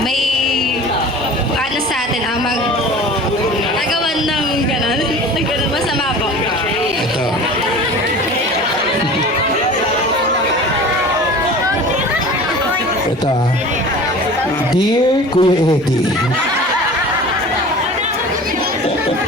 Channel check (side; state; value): both; normal; correlation 0.40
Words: sa atin, nagawan ng gano'n, masama po. Ito. Ito ah. Dear Kuya Eddie.